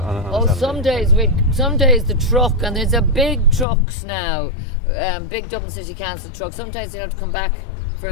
some days the truck, and there's a big trucks now, big Dublin City Council truck. Sometimes you have to come back for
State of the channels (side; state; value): right; drops out; at 3.7 s